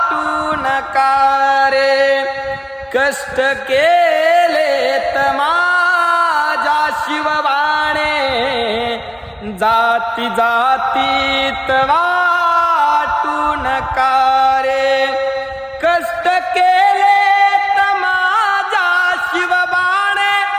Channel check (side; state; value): both; identical; correlation 1.00